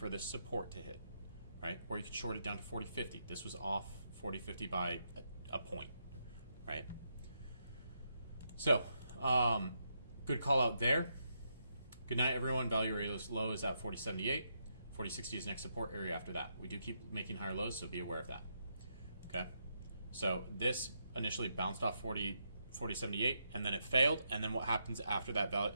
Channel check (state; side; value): inverted; both; correlation -0.81